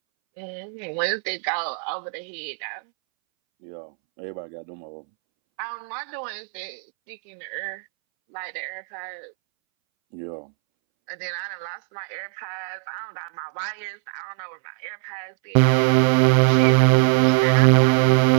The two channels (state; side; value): silent; left; 64 dB below the other